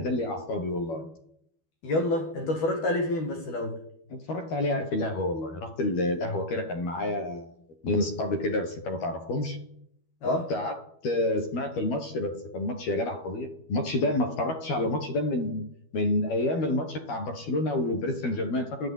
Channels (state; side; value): late; right; 12 ms